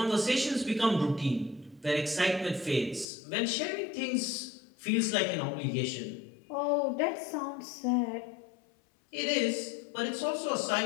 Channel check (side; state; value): right; drops out; at 3.1 s